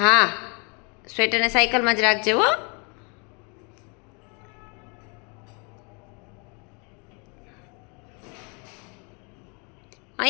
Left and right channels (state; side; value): quieter; right; 33.5 dB